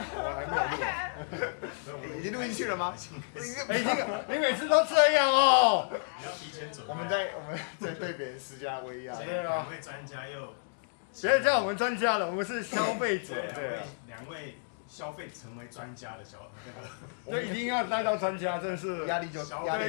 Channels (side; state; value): right; silent; digital silence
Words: 我还没有录。已经录进去了吗？哎，这个你每次都这样哦。你要提前准备。我们在对别人施加威压。对啊两位专家又，别叫我们专家了，我们是消费者。对啊。两位消费成为专家的这一定要带到专家，真的是压力